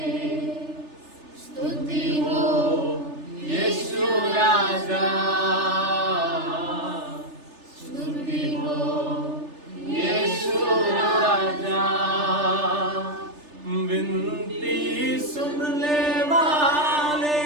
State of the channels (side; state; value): left; late; 3.3 ms